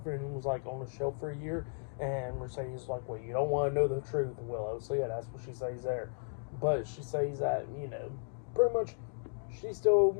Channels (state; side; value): silent; right; digital silence